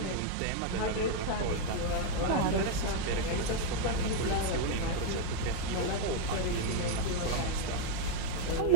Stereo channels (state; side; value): different; both; correlation 0.01